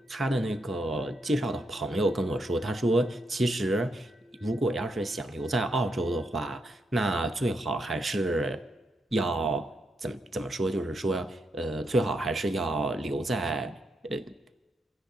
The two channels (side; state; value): both; normal; correlation 0.80